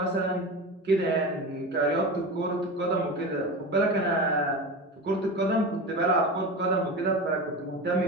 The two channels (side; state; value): both; normal; correlation 0.27